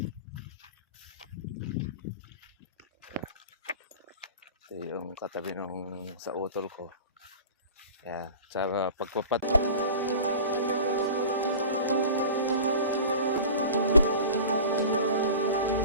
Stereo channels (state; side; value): inverted; both; correlation -0.37